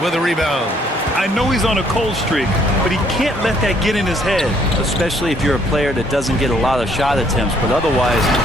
with a rebound. I know he's on a cold streak, but he can't let that get in his head. Especially if you're a player that doesn't get a lot of shot attempts. But otherwise,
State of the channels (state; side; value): normal; both; correlation 0.65